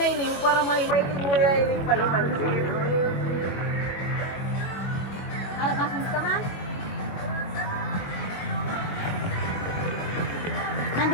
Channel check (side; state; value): right; late; 22 ms